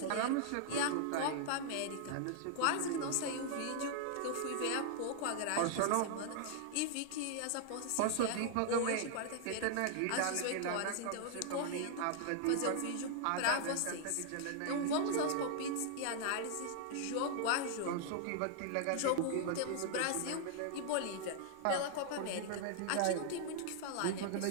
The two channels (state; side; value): different; both; correlation -0.01